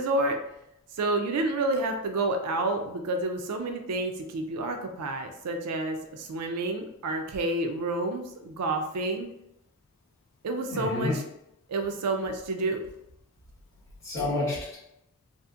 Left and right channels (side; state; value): both; normal; correlation 0.02